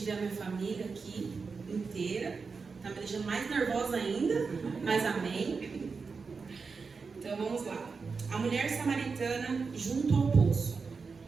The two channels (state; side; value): quieter; left; 4.9 dB